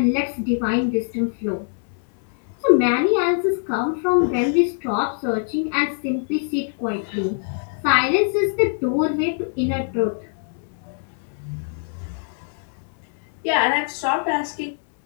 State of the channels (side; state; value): right; silent; 62 dB below the other